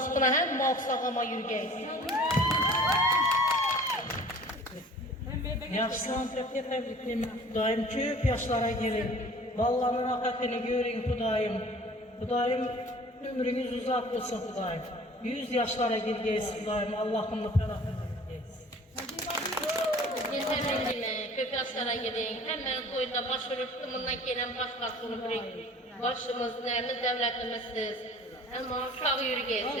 hem sağlama yürgeysiz. Yaşlan tebrikleme. Xudoyim köp yaşlara gelin. Ballarni rohatini görün Xudoyim. Xudoyim ömrünüz uzak olsun Xudoyim. 100 yaşlara girgeysiz Xudoyim. Allah'ımla ferahını yürgeysiz. Yeterli köp yaşlara gidin. Hemen koyunda başvurup tımından gelen başbakan olup başımız, neyimiz, devletimizsiz. Ama sağ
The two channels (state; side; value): normal; both; correlation 0.47